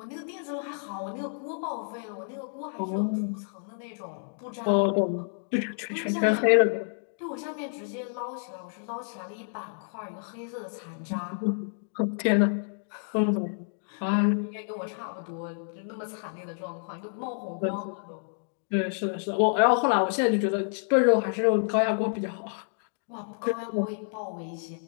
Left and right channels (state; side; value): silent; right; digital silence